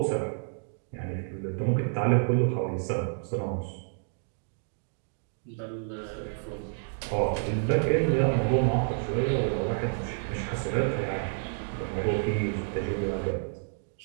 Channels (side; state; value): left; silent; digital silence